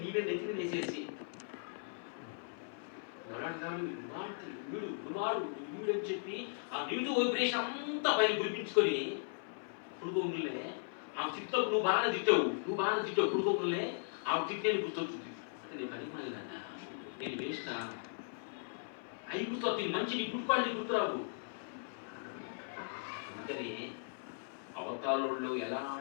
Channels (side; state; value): right; silent; 53 dB below the other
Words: నీవే నెత్తిని వేసేసి వీడు అని చెప్పి ఆ నెగిటివ్ వైబ్రేషన్ అంతా పైన గురిపించుకొని పుడుకోములే ఆమె తిట్టావు, నువ్వు బాగా తిట్టావు పుడుకోములే ఆమె తిట్టేది గుర్తొచ్చింది. అంటే నేను పని మళ్ళీ నేను వేస్తా అవి గుర్తొస్తుంది, మంచి నీ గుర్తుపాళ్ళు గుర్తురావు. అందుకని అవతారంలో